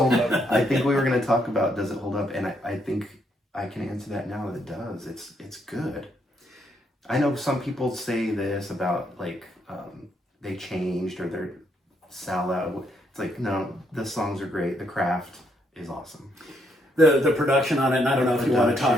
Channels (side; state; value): both; normal; correlation 0.74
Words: hold up. I think we were going to talk about does it hold up, and I think I can answer that now. It does. It's good. I know some people say this about like they changed or they're salad. It's like no, the songs are great. The craft is awesome. The production on it, and I don't know if you want to